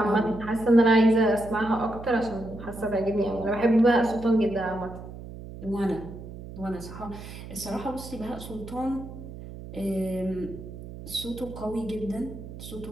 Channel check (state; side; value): noise; right; hum, 13 dB below the sound